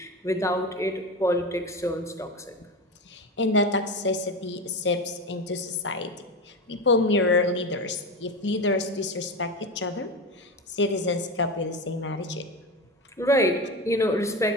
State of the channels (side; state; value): both; normal; correlation 0.22